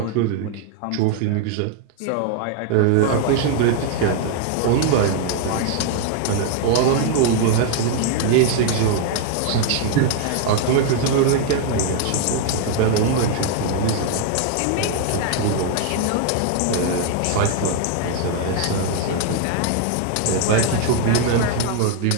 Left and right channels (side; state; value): both; different; correlation 0.00